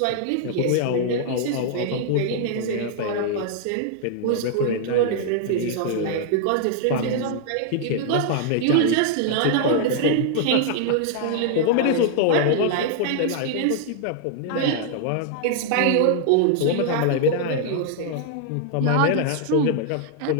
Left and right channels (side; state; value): both; different; correlation -0.01